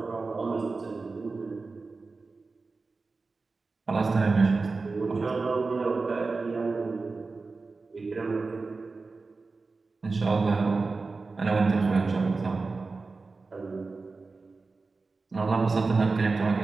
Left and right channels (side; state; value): left; quieter; 4.0 dB